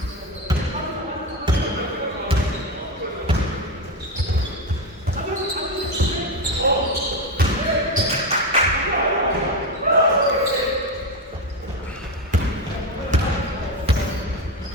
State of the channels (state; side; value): normal; both; correlation 0.14